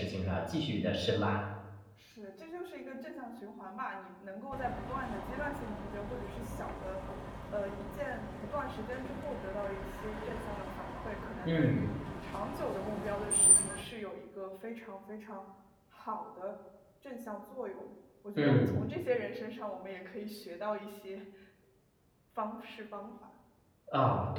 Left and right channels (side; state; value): both; identical; correlation 1.00